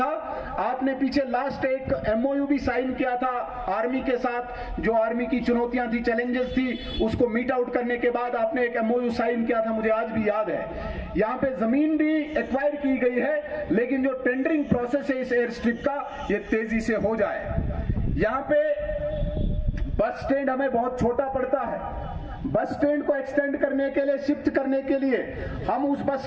आपने पीछे लास्ट एक MOU भी साइन किया था आर्मी के साथ। जो आर्मी की चुनौतियां थी, चैलेंजेस थी, उसको मीट आउट करने के बाद आपने एक MOU साइन किया था, मुझे आज भी याद है। यहाँ पे जमीन भी एक्वायर की गई है, लेकिन जो टेंडरिंग प्रोसेस है इस एयर स्ट्रिप का, ये तेजी से हो जाए। यहाँ पे बस स्टैंड हमें बहुत छोटा पड़ता है। बस स्टैंड को एक्सटेंड करने के लिए, शिफ्ट करने के लिए हम उस बस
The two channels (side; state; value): both; identical; correlation 1.00